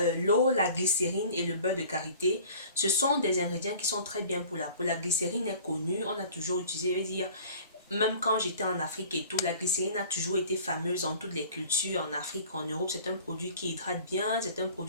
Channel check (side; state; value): both; inverted; correlation -0.45